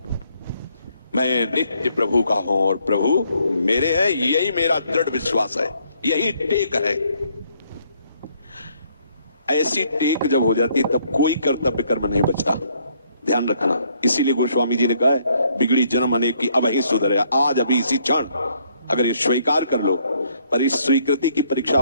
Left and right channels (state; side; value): inverted; both; correlation -0.68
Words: मैं नित्य प्रभु का हूं और प्रभु मेरे हैं। यही मेरा दृढ़ विश्वास है, यही टेक है। ऐसी टेक जब हो जाती है तब कोई कर्तव्य कर्म नहीं बचता, ध्यान रखना। इसीलिए गोस्वामी जी ने कहा है, बिगड़ी जन्म अनेक की अब ही सुधरे। आज अभी इसी क्षण अगर ये स्वीकार कर लो, पर इस स्वीकृति की परीक्षा